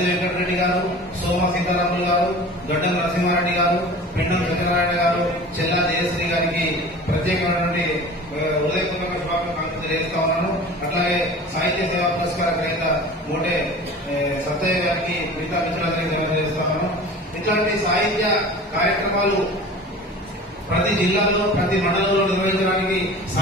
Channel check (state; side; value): normal; both; correlation 0.39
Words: వెంకటరెడ్డి గారు, సోమ సీతారాములు గారు, గడ్డం నరసింహారెడ్డి గారు, పెండం సత్యనారాయణ గారు, చెల్లా జయశ్రీ గారికి ప్రత్యేకమైనటువంటి హృదయపూర్వక శుభాకాంక్షలు తెలియజేస్తా ఉన్నాను. అట్లాగే సాహిత్య సేవా పురస్కార గ్రహీత మోటే సత్తయ్య గారికి, మిగతా మిత్రులందరికీ తెలియజేస్తా ఉన్నాను. ఇట్లాంటి సాహిత్య కార్యక్రమాలు ప్రతి జిల్లాలో, ప్రతి మండలంలో నిర్వహించడానికి